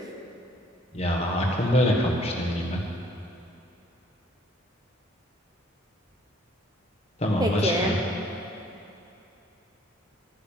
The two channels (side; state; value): both; normal; correlation 0.61